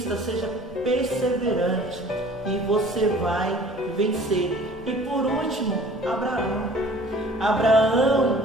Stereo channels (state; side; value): normal; both; correlation 0.49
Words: seja perseverante e você vai vencer. E por último, Abraão,